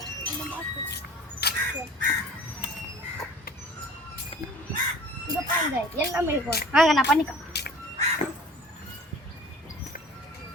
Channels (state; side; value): normal; both; correlation 0.45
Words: இங்க பாருங்க எல்லாமே இருக்கும். வாங்க நான் பண்ணிக்கலாம்.